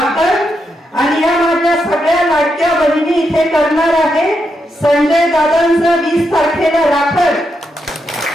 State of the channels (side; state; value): both; normal; correlation 0.83